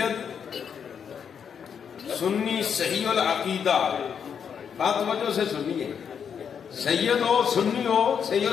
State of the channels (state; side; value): quieter; right; 7.4 dB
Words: سنی صحیح العقیدہ، بات توجہ سے سنیے، سید ہو سنی ہو صحیح